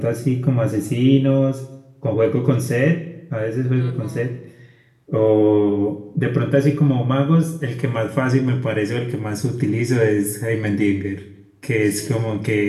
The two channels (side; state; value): both; identical; correlation 1.00